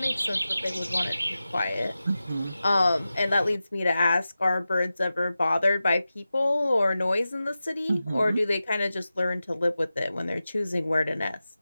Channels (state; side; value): inverted; both; correlation -0.94